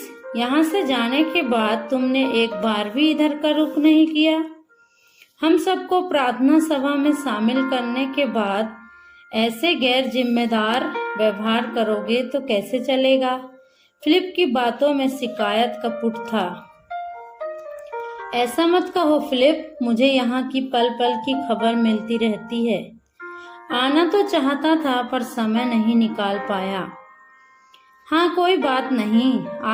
यहाँ से जाने के बाद तुमने एक बार भी इधर का रुख नहीं किया। हम सबको प्रार्थना सभा में शामिल करने के बाद ऐसे गैर जिम्मेदार व्यवहार करोगे तो कैसे चलेगा? फिलिप की बातों में शिकायत का पुट था। ऐसा मत कहो फिलिप, मुझे यहाँ की पल पल की खबर मिलती रहती है। आना तो चाहता था पर समय नहीं निकाल पाया। हाँ, कोई बात नहीं,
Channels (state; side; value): identical; both; correlation 1.00